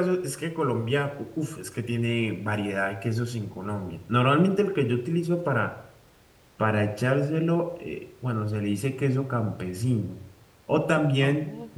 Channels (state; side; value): identical; both; correlation 1.00